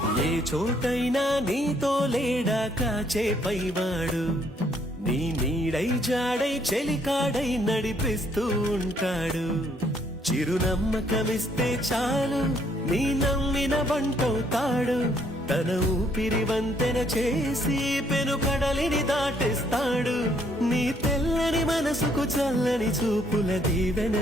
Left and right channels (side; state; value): both; normal; correlation 0.67